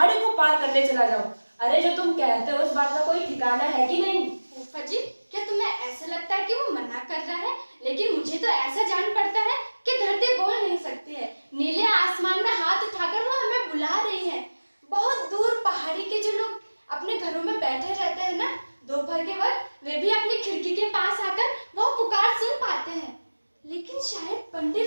को पार करने चला जाओ। अरे जो तुम कहते हो उस बात का कोई ठिकाना है कि नहीं? फूफा जी, क्या तुम्हें ऐसा लगता है कि वो मना कर रहा है? लेकिन मुझे तो ऐसा जान पड़ता है कि धरती बोल नहीं सकती है। नीले आसमान में हाथ उठाकर वो हमें बुला रही है। बहुत दूर पहाड़ी के जो लोग अपने घरों में बैठे रहते हैं ना, दोपहर के वक्त, वे भी अपनी खिड़की के पास आकर वो पुकार सुन पाते हैं। लेकिन शायद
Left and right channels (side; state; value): both; inverted; correlation -1.00